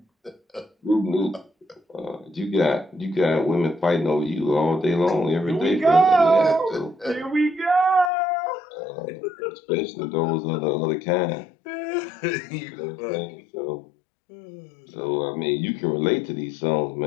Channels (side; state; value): right; drops out; at 8.1 s